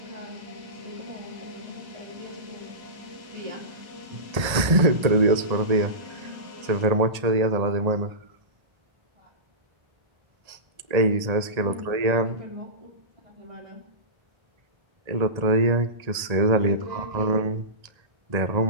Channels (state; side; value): late; left; 1.8 ms